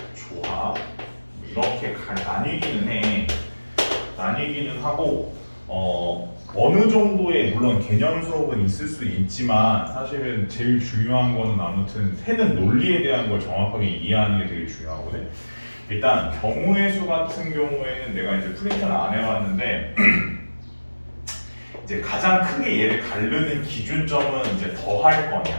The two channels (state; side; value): inverted; both; correlation -1.00